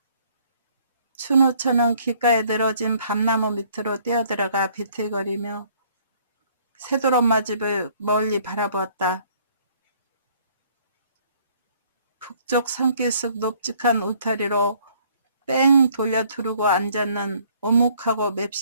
춘우처는 길가에 늘어진 밤나무 밑으로 뛰어들어가 비틀거리며 새돌엄마 집을 멀리 바라보았다. 북쪽 산길속 높직한 울타리로 뺑 돌려 두르고 앉았는 오묵하고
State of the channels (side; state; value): both; inverted; correlation -0.60